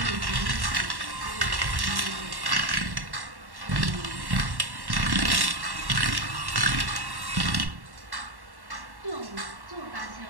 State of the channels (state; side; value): late; left; 1.1 ms